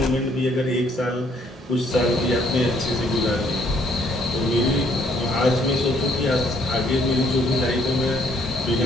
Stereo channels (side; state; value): both; normal; correlation 0.65